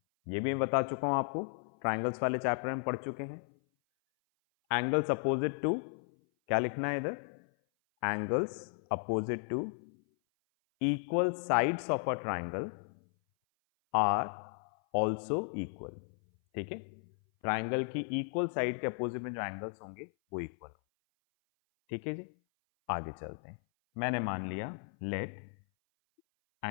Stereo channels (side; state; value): right; silent; 55 dB below the other